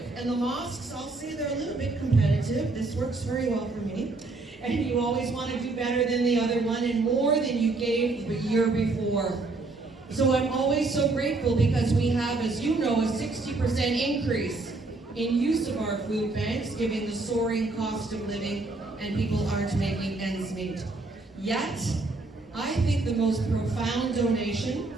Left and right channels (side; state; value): left; quieter; 3.4 dB